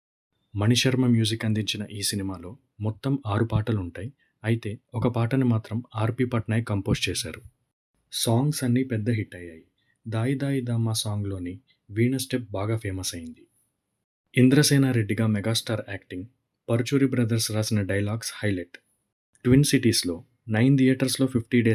మణిశర్మ మ్యూజిక్ అందించిన ఈ సినిమాలో మొత్తం 6 పాటలుంటాయి. అయితే ఒక పాటని మాత్రం ఆర్‌పి పట్నాయక్ కంపోజ్ చేశారు. సాంగ్స్ అన్నీ పెద్ద హిట్ అయ్యాయి. 'దాయి దాయి దామ్మా' సాంగ్‌లోని వీణ స్టెప్ బాగా ఫేమస్ అయింది. ఇంద్రసేనారెడ్డిగా మెగాస్టార్ యాక్టింగ్, పరుచూరి బ్రదర్స్ రాసిన డైలాగ్స్ హైలైట్. ట్విన్ సిటీస్‌లో 9 థియేటర్స్‌లో 50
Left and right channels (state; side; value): identical; both; correlation 1.00